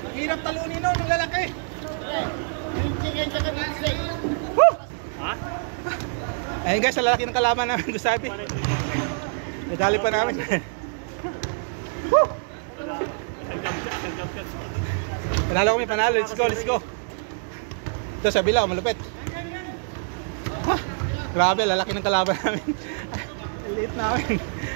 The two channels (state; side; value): silent; left; digital silence